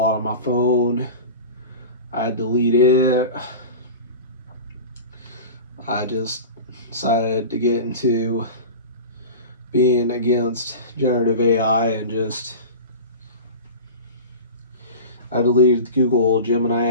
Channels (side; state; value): both; inverted; correlation -0.32